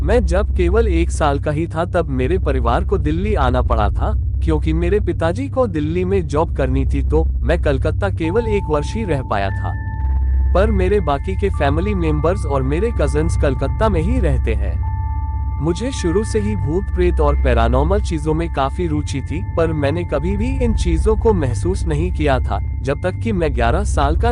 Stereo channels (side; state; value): both; identical; correlation 1.00